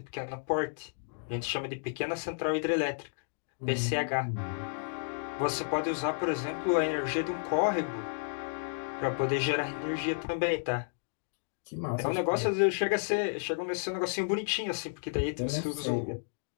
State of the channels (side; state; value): right; silent; digital silence